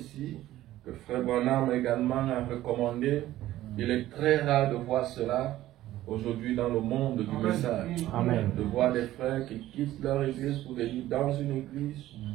que Frère Branham également a recommandé. Il est très rare de voir cela aujourd'hui dans le monde du message. Amen. De voir des frères qui quittent leur église pour venir dans une église.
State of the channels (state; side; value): quieter; left; 14.6 dB